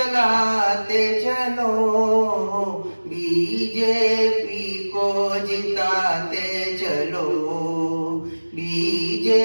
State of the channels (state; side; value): inverted; both; correlation -1.00